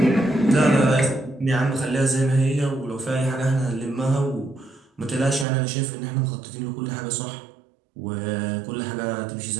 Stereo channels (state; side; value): drops out; left; at 5.5 s